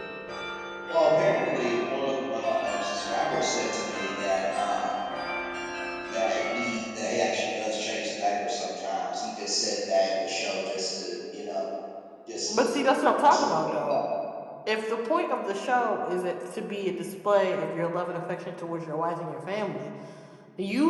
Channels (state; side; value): identical; both; correlation 1.00